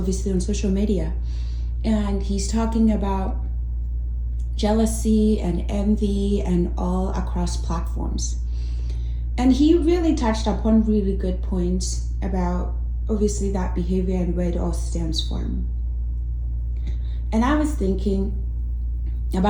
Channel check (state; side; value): identical; both; correlation 1.00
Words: on social media, and he's talking about jealousy and envy and all across platforms. And he really touched upon really good points about obviously that behavior and where it all stems from. And I was thinking